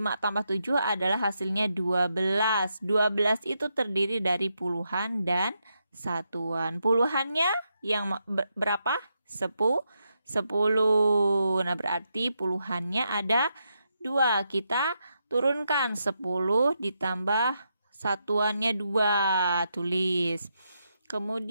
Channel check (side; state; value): both; inverted; correlation -0.82